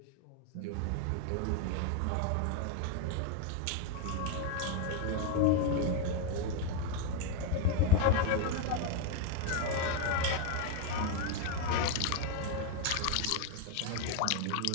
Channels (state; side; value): different; both; correlation 0.01